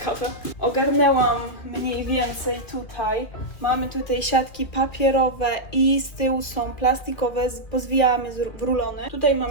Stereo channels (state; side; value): late; right; 2.2 ms